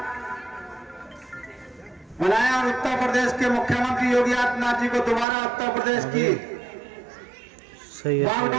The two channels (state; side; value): drops out; left; at 5.2 s